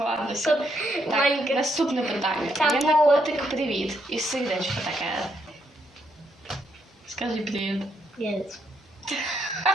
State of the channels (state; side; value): normal; both; correlation 0.76